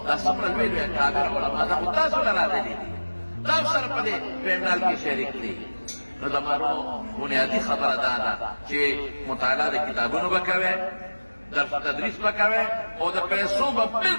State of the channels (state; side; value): inverted; both; correlation -1.00